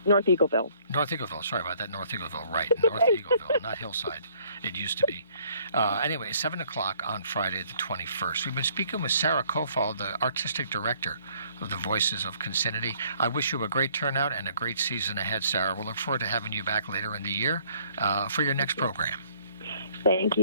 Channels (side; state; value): both; inverted; correlation -0.61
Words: North Eagleville. North Eagleville, sorry about that, North Eagleville, right, North Eagleville, not Hillside. It used to be. Anyway, 7 o'clock on Friday the 21st. We've been speaking with Sarah Kofal, the artistic director of the Voices of Concinnati. I wish you a great turnout and a great season ahead, Sarah. We'll look forward to having you back later in the year for your next program. Thank